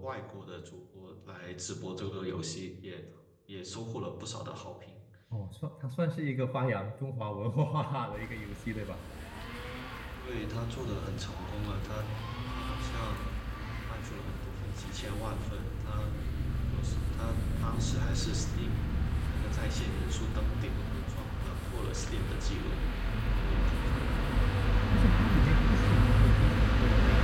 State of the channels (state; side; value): identical; both; correlation 1.00